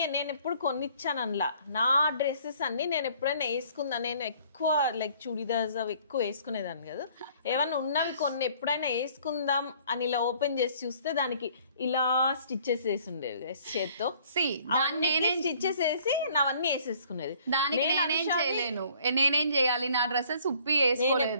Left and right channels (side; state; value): both; inverted; correlation -0.58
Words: నేను ఎప్పుడు కొనిచ్చాను అనలా. నా డ్రెస్సెస్ అన్ని నేను ఎప్పుడైనా వేసుకుందా, నేను ఎక్కువ లైక్ చుడిదార్స్ అవి ఎక్కువ వేసుకునేదాన్ని కదా. ఏమన్నా ఉన్నవి కొన్ని ఎప్పుడైనా వేసుకుందాం అని ఇలా ఓపెన్ చేసి చూస్తే దానికి ఇలా స్టిచ్చెస్ వేసి ఉండేవి చేత్తో. స్టిచ్చెస్ వేసి నావన్నీ వేసేసుకునేది. దానికి నేనేం చేయాలి, నా డ్రెస్సెస్ ఉప్పి